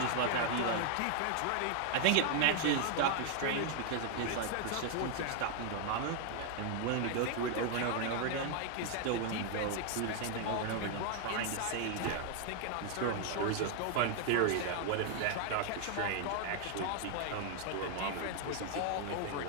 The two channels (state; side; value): different; both; correlation 0.00